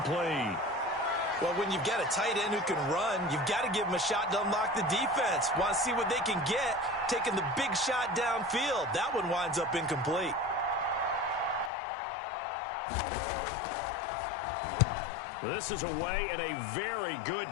Well, when you've got a tight end who can run, you've got to give him a shot to unlock the defense. Want to see what they can get, taking the big shot downfield. That one winds up incomplete. This is away and a very good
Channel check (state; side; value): drops out; right; at 11.7 s